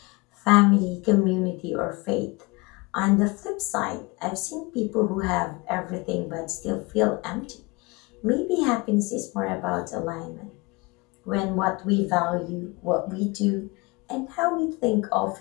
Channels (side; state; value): right; quieter; 25.9 dB